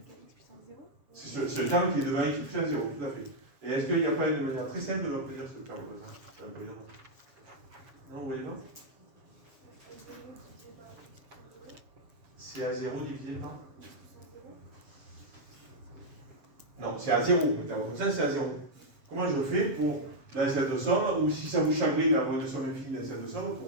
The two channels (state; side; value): late; left; 7.3 ms